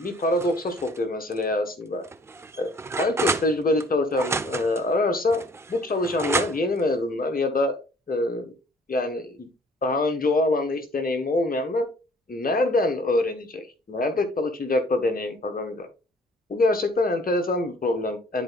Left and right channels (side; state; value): both; normal; correlation 0.57